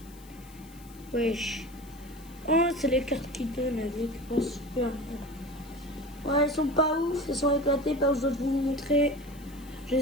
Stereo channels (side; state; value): left; noise; hiss, 23 dB below the sound